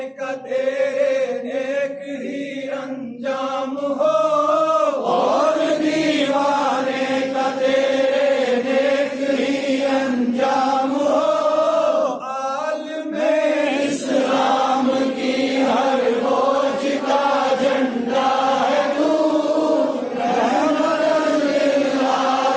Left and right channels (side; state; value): both; identical; correlation 1.00